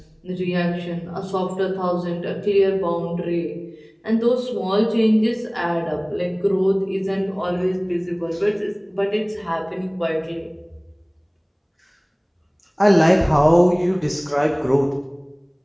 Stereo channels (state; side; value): identical; both; correlation 1.00